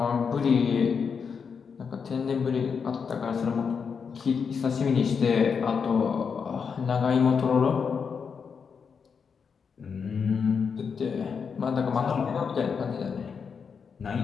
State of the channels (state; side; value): quieter; right; 6.1 dB